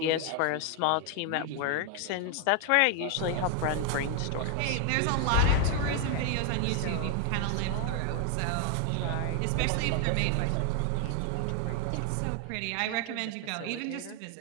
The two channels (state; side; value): different; both; correlation 0.00